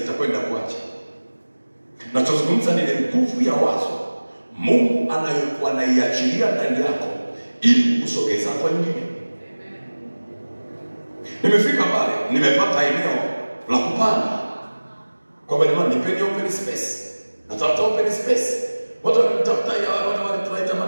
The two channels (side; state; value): both; inverted; correlation -1.00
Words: kuacha. Nachozungumza ni nguvu ya wazo Mungu anayokuwa anaiachilia ndani yako ili kusogeza kwa nyingine. Nimefika pale, nimepata eneo la kupanga. Kwamba ni nipeni open space. Natafuta open space. Watu wakitafuta ya wale tunaita